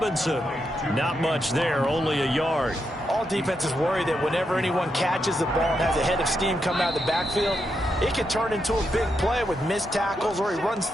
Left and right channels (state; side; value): normal; both; correlation 0.83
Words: Not much there, only a yard. All defenses worry that whenever anyone catches the ball and has a head of steam come out of the backfield, it can turn into a big play with missed tackles or he runs